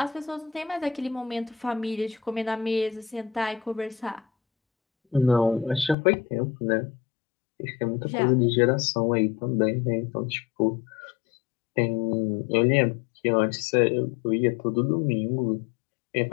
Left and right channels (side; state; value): right; drops out; at 6.0 s